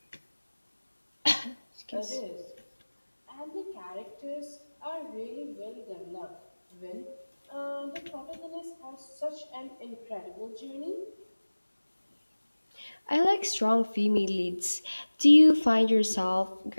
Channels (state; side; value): inverted; both; correlation -1.00